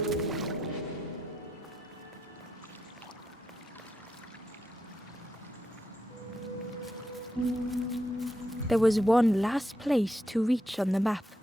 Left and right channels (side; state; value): both; normal; correlation 0.83